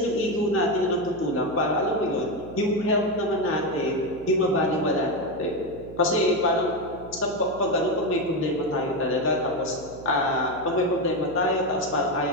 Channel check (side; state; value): right; noise; hum, 16 dB below the sound